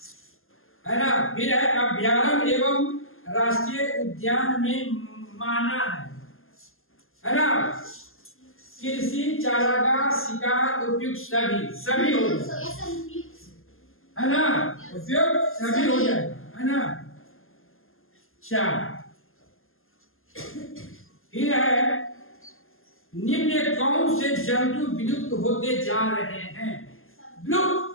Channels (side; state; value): right; late; 0.60 ms